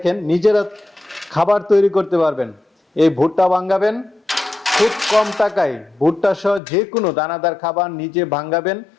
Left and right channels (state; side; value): drops out; right; at 6.6 s